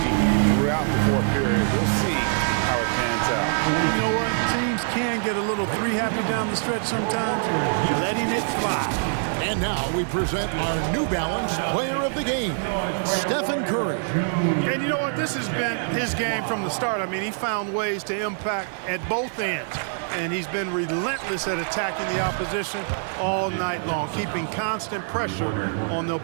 throughout the 4th period. We'll see how it pans out. You know what? Teams can get a little three-happy down the stretch sometimes, letting it fly. And now we present our New Balance player of the game, Stephen Curry. And you know what? This has been his game from the start. I mean, he found ways to impact at both ends. And he's been relentless at attacking the opposition all night long, keeping constant pressure on the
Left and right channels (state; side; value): silent; left; 62 dB below the other